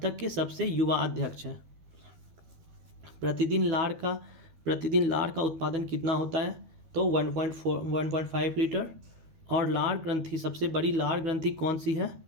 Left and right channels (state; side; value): late; left; 12 ms